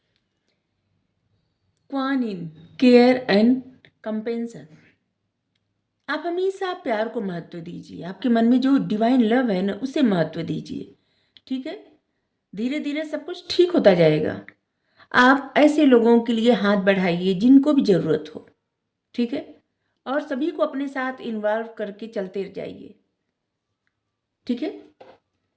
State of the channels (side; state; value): both; identical; correlation 1.00